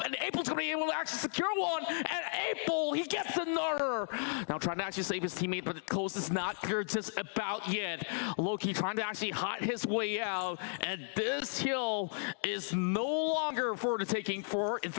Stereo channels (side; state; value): right; silent; digital silence